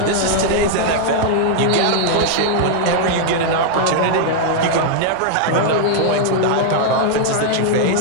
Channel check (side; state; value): both; different; correlation -0.01